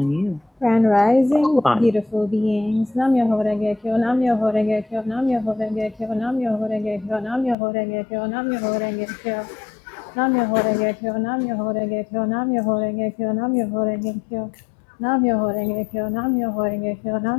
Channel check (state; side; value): drops out; right; at 7.6 s